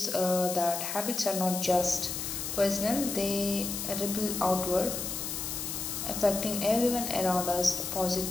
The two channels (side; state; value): left; noise; hiss, 4 dB below the sound